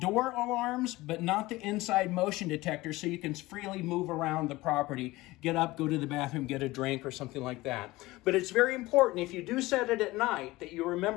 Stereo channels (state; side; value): quieter; right; 19.5 dB